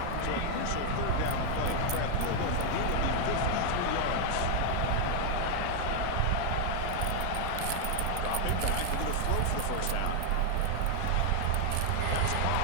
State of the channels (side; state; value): both; different; correlation 0.00